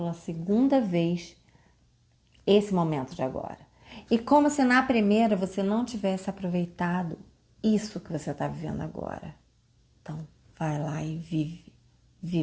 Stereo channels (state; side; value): identical; both; correlation 1.00